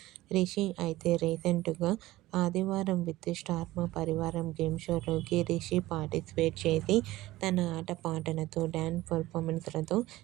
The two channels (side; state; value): left; quieter; 17.3 dB